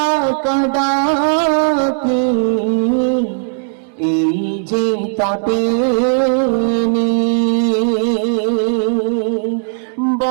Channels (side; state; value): left; silent; digital silence